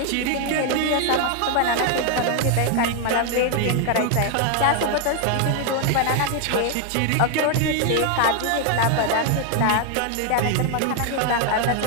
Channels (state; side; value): different; both; correlation 0.00